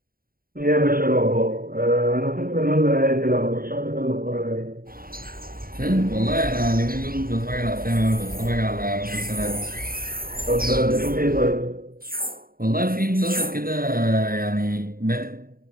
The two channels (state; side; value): late; left; 0.42 ms